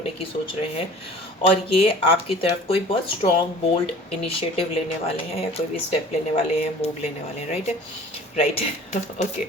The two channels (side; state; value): both; normal; correlation 0.45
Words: की सोच रहे हैं और ये आपकी तरफ कोई बहुत स्ट्रॉन्ग बोल्ड इनिशिएटिव लेने वाले हैं या कोई भी स्टेप लेने वाले हैं, मूव लेने वाले हैं, राइट। राइट ओके,